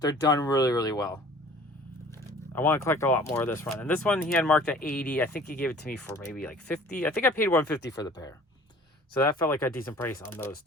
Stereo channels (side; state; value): both; normal; correlation 0.48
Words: done really, really well. I want to collect a lot more of this run. And this one he had marked at 80. I think he gave it to me for maybe like 50. I think I paid 150 for the pair. So that felt like a decent price on those